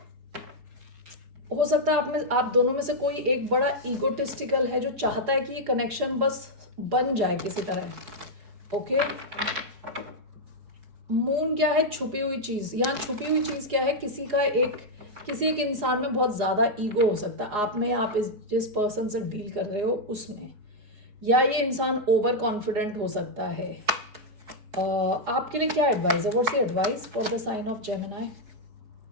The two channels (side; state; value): left; late; 4.9 ms